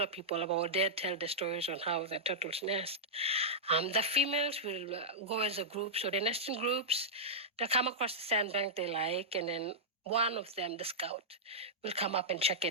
people about, they'd tell the stories on how the turtles nest. The females will go as a group, so they nest in groups. They'll come across the sandbank they like, and then one of them, the scout, will come up and check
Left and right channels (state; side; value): normal; both; correlation -0.10